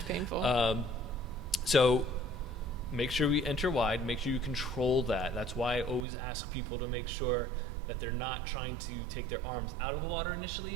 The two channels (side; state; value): left; drops out; at 6.1 s